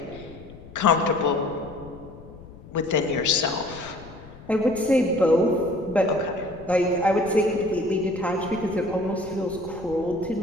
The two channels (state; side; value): noise; left; rumble, 18 dB below the sound